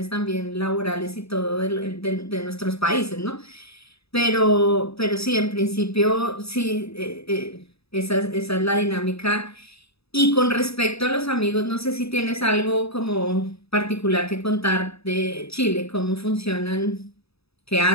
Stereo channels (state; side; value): late; right; 0.78 ms